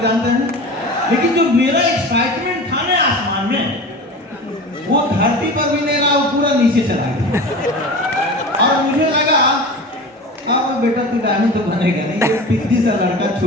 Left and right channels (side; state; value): both; normal; correlation 0.33